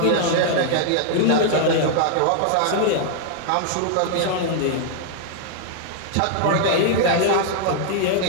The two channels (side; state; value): both; different; correlation 0.00